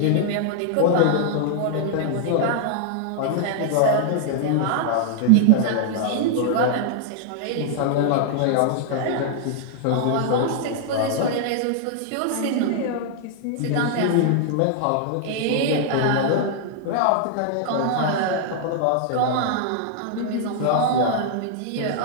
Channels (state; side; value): different; both; correlation -0.01